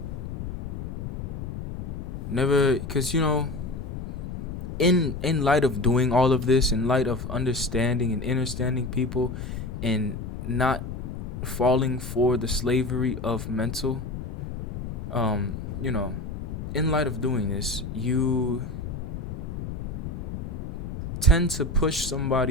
Never, because, in light of doing all of this, in light of understanding and understanding people and not falling for the slavery of mental, in light of doing this, you tend to push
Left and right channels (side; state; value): left; noise; rumble, 8 dB below the sound